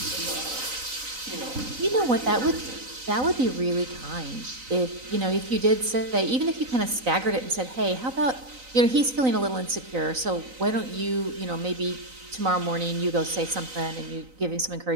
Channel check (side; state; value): left; late; 3.9 ms